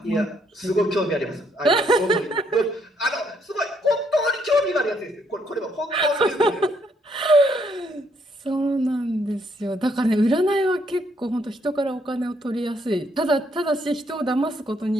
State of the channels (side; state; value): both; normal; correlation 0.71